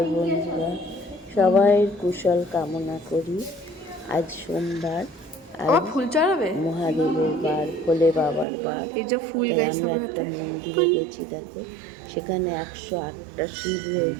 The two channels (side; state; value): left; drops out; at 8.5 s